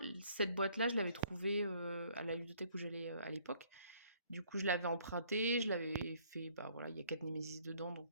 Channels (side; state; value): both; inverted; correlation -0.61